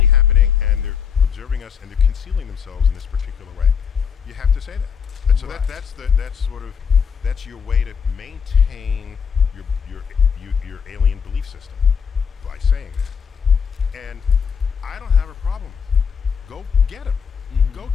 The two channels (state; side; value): quieter; right; 6.8 dB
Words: happening and they're observing us and they're concealing themselves in this particular way. You have to say that. And so Right. that's your way to maintain your alien belief system by saying that. And I don't have a problem with it. Go get them. Mhm. Go